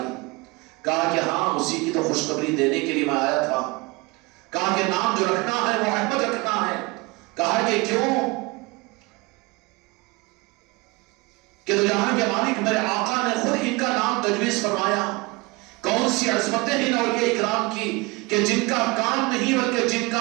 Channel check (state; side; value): quieter; left; 25.2 dB